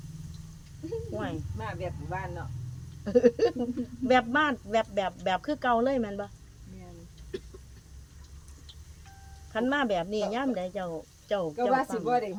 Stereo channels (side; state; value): both; identical; correlation 1.00